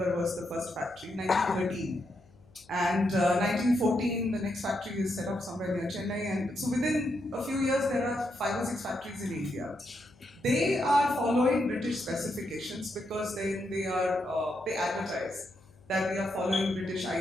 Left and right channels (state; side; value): noise; left; hum, 28 dB below the sound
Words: was the first factory, 1913. And 1914, the next factory is set up somewhere near Chennai. And so within a few years, there are 5 or 6 factories in India. They are following British specifications because they advertise that they are following British